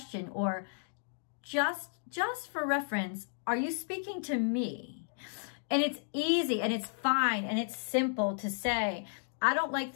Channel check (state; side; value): silent; right; digital silence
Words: Or just for reference, are you speaking to me? And it's easy and it's fine and it's simple to say, I don't like